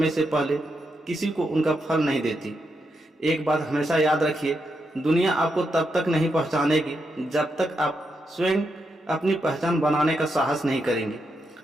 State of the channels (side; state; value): both; normal; correlation 0.83